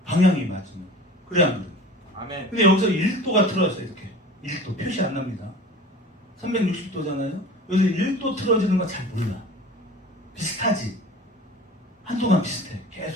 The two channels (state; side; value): normal; both; correlation 0.40